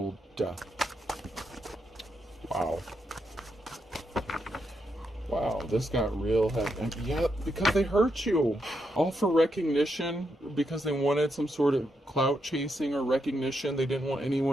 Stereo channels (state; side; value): normal; both; correlation 0.82